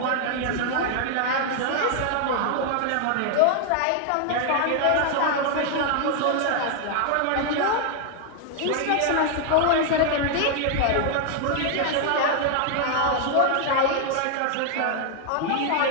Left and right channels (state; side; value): different; both; correlation 0.00